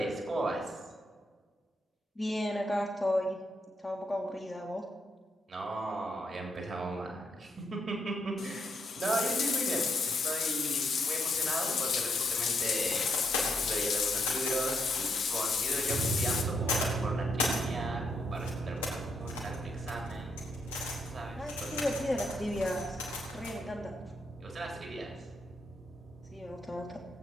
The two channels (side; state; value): both; normal; correlation 0.77